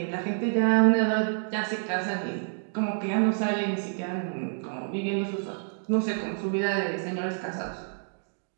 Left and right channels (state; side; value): silent; left; digital silence